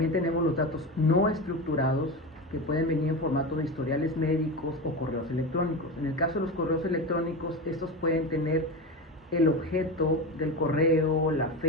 tenemos los datos no estructurados, que pueden venir en formato de historiales médicos o correos electrónicos. En el caso de los correos electrónicos, estos pueden tener el objeto del correo, la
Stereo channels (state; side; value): normal; both; correlation 0.22